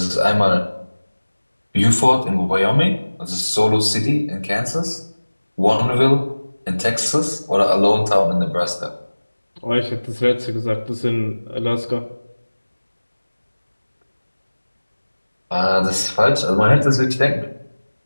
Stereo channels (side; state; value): both; inverted; correlation -1.00